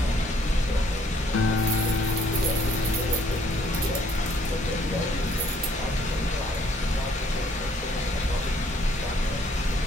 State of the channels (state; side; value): normal; both; correlation 0.64